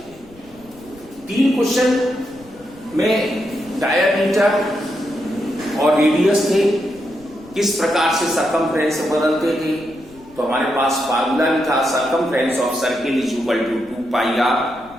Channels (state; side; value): noise; left; rumble, 25 dB below the sound